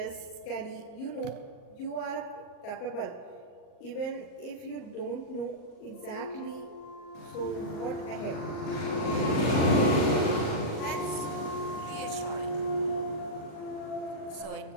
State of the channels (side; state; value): right; late; 38 ms